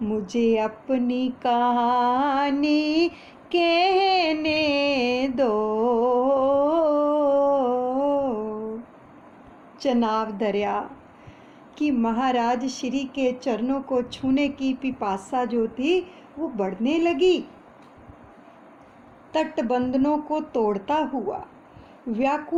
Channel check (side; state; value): both; identical; correlation 1.00